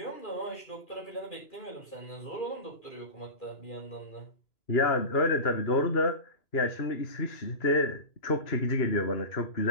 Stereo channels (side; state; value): right; late; 2.4 ms